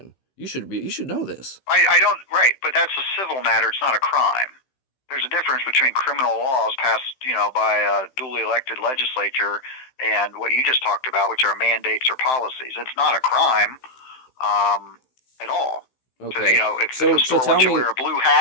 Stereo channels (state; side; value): late; right; 15 ms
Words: You should know this. I don't, right, but that's a civil matter. It's not a crime. There's a difference between criminal laws passed, by a duly elected legislature and what you just talked about, which are mandates or policies. It's not a crime at all. Okay. If the store wants you to wear a blue